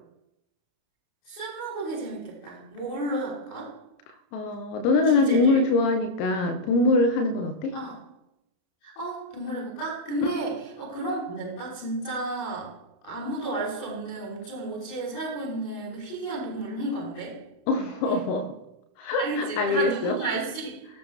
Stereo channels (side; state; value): right; late; 30 ms